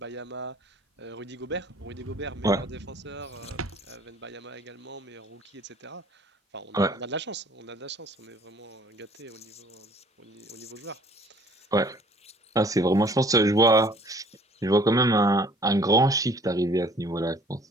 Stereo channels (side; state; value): both; normal; correlation 0.55